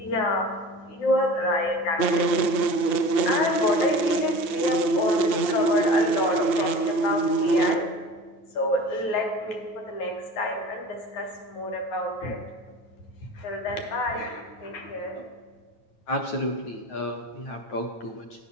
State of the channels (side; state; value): right; late; 9.2 ms